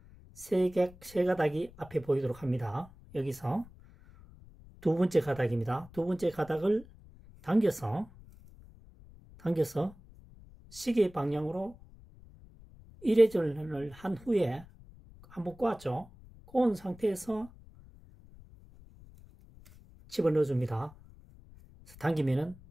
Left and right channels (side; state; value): left; noise; rumble, 22 dB below the sound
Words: 세 가닥이 앞에 보이도록 합니다. 여기서 두 번째 가닥입니다. 두 번째 가닥을 당겨서 시계 방향으로 1회전을 한 후에 한번 꼬았죠. 꼬은 상태에서 집어넣어 줍니다. 당기면은